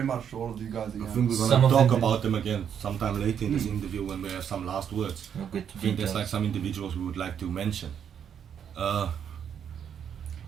much to all of you guys I again. think we're Some gonna of talk them- about them again sometime later in this interview when we have some last words. We'll get to I think there's details. like some individuals we would like to mention.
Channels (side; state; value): left; quieter; 8.3 dB